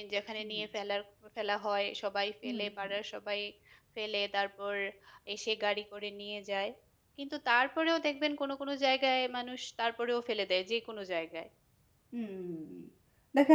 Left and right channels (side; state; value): both; identical; correlation 1.00